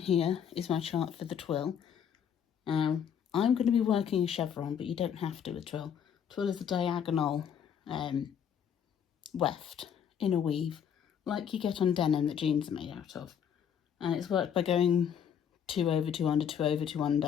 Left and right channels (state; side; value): quieter; right; 8.2 dB